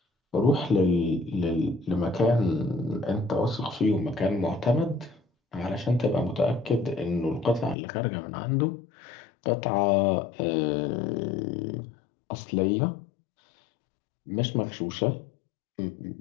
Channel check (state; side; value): drops out; right; at 7.8 s